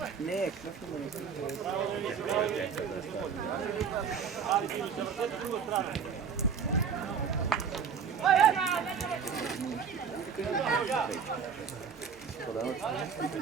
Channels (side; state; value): left; quieter; 6.5 dB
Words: Не, кръв има на кръв.